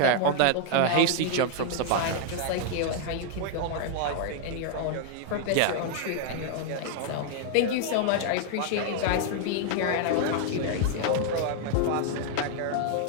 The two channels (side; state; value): both; different; correlation 0.00